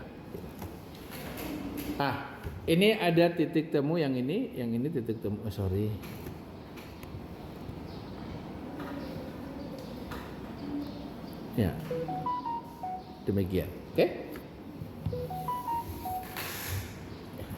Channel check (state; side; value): identical; both; correlation 1.00